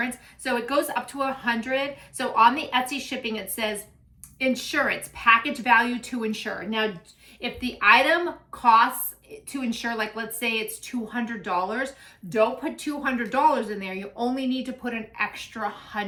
So it goes up to 100. So on the Etsy shipping, it says insurance, package value to insure. Now, if the item costs to insure, like let's say it's $200, don't put $200 in there. You only need to put an extra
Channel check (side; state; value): both; identical; correlation 1.00